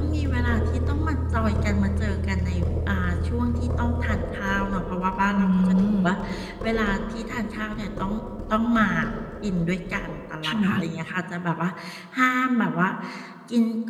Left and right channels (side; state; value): both; identical; correlation 1.00